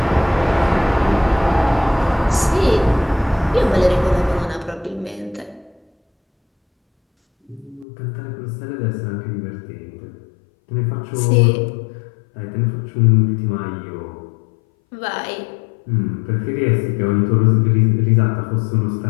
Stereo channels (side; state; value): right; drops out; at 7.9 s